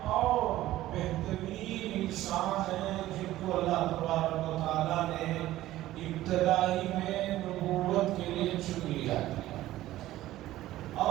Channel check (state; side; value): quieter; left; 15.2 dB